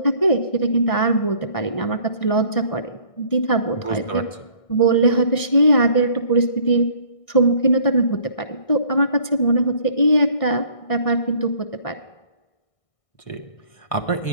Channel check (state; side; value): late; right; 1.6 ms